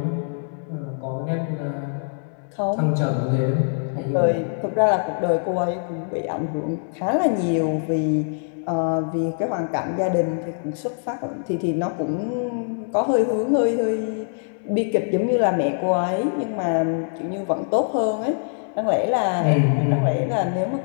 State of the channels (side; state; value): right; silent; digital silence